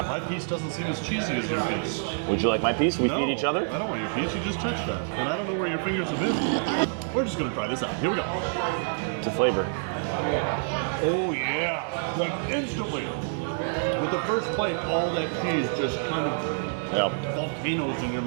My piece doesn't seem as cheesy as your piece. Would you like my piece? We No, feed each other. I don't want your piece. You just touched that. And I don't know where your fingers have been. We're just going to try this out. Here we go. It's a flavor. Oh, yeah. Like instantly. With the first bite, all that cheese just kind of volcanoes in your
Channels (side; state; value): left; silent; digital silence